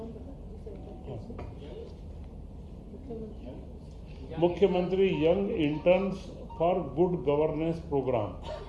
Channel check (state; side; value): identical; both; correlation 1.00